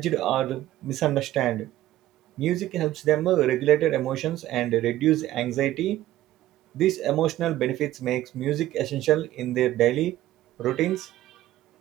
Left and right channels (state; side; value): quieter; left; 14.6 dB